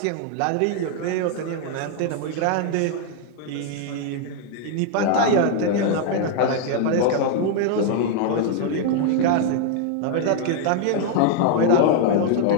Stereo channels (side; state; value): both; different; correlation 0.00